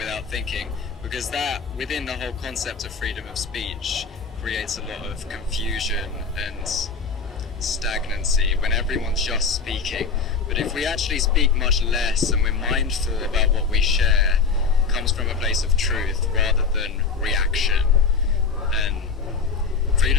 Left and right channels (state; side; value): quieter; right; 5.0 dB